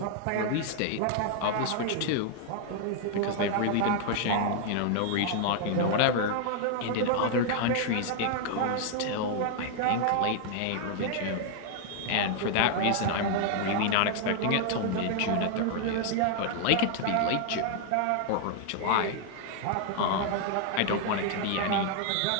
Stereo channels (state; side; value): different; both; correlation 0.00